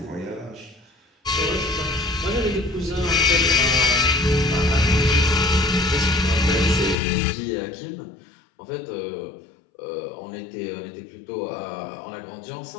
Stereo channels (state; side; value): drops out; right; at 7.0 s